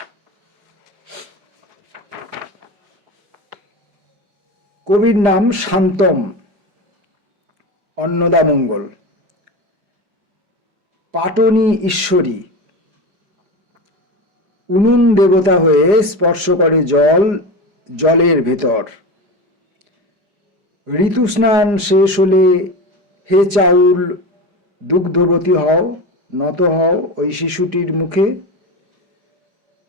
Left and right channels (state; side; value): late; left; 4.9 ms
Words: কবির নাম শান্তম, অন্নদামঙ্গল। পাটনি ঈশ্বরী, উনুন দেবতা হয়ে স্পর্শ করে জলের ভেতর। ঋতু স্নান শেষ হলে হে চাউল দুগ্ধবতী হও, নত হও ওই শিশুটির মুখে।